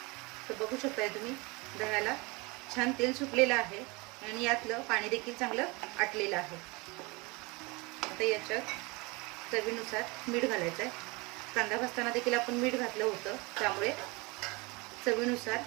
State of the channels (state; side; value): quieter; left; 26.2 dB